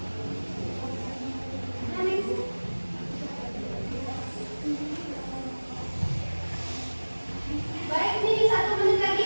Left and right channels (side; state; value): both; inverted; correlation -1.00